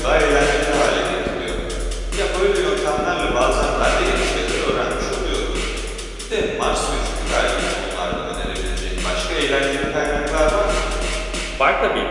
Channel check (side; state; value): both; identical; correlation 1.00